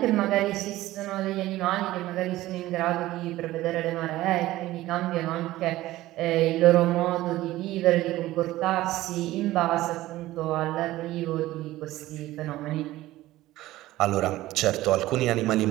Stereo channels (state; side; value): quieter; left; 16.3 dB